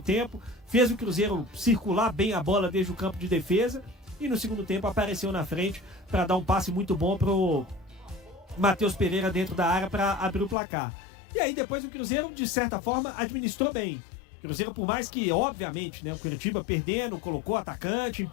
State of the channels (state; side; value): drops out; right; at 10.6 s